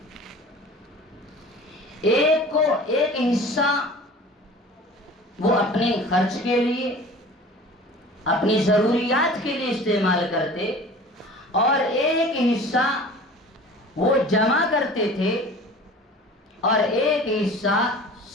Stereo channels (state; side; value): normal; both; correlation 0.42